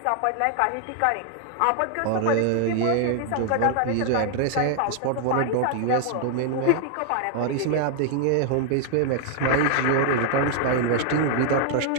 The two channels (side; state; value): both; different; correlation 0.00